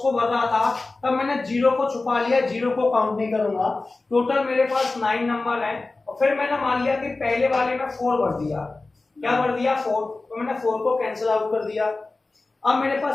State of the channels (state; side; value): quieter; right; 3.4 dB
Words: भर रहा था तब मैंने 0 को छुपा लिया, 0 को काउंट नहीं करूंगा। टोटल मेरे पास 9 नंबर है, और फिर मैंने मान लिया कि पहले वाले में 4 भर दिया। क्या भर दिया? 4, तो मैंने 4 को कैंसिल आउट कर दिया। अब मेरे